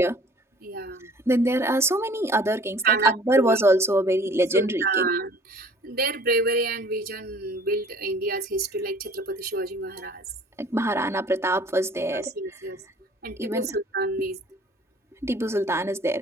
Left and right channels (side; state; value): both; normal; correlation 0.51